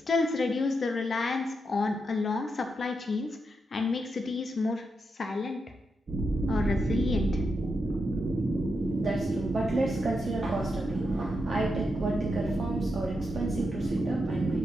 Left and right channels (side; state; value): both; normal; correlation 0.85